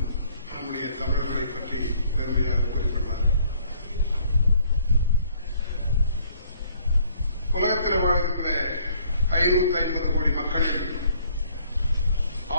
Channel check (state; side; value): inverted; both; correlation -0.62